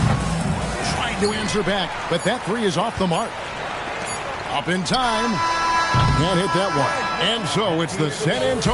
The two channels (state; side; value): identical; both; correlation 1.00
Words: Trying to answer back, but that 3 is off the mark. Up in time. Can't hit that one. And so it's the San